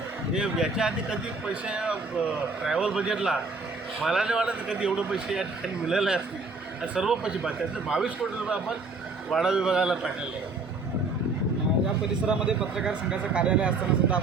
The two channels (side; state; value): left; quieter; 3.7 dB